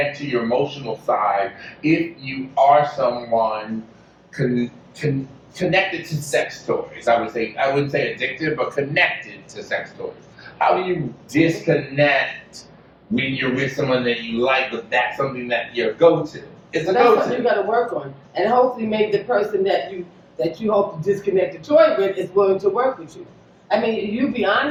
to your emotional side if you are someone connected to sex toys? I wouldn't say addicted, but connected to sex toys. How do you disconnect when you're with someone that you like, but that's something that you're go-to? It's a That's go-to. something you got to work on, and hopefully, maybe the person that you hope to disconnect the toy with is willing to work with you. I mean, you be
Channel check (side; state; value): both; identical; correlation 1.00